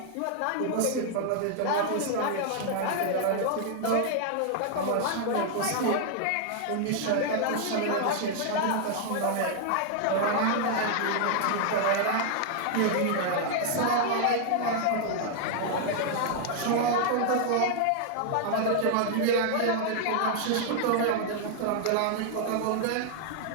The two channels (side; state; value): both; different; correlation 0.00